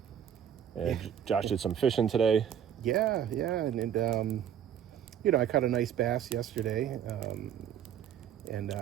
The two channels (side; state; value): left; quieter; 9.3 dB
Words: Josh did some fishing today. Yeah, and I caught a nice bass yesterday, and